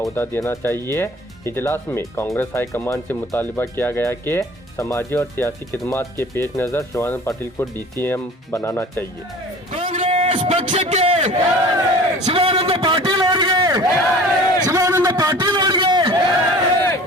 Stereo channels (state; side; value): normal; both; correlation 0.44